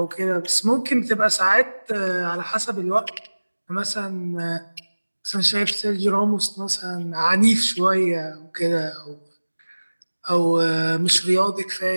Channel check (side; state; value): both; inverted; correlation -1.00